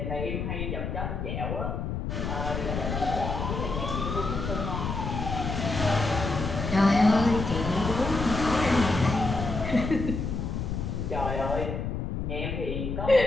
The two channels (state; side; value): noise; left; rumble, 3 dB below the sound